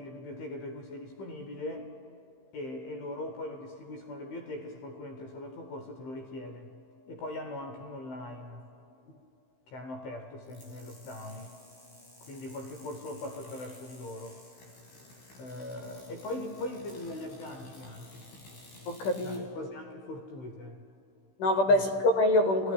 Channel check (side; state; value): right; late; 15 ms